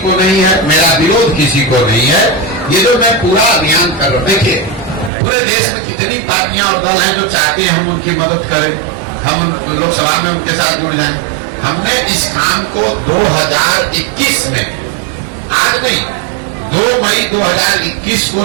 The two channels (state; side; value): drops out; left; at 5.1 s